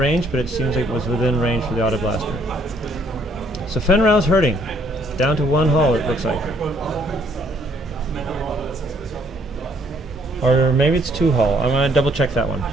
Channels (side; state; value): both; normal; correlation 0.65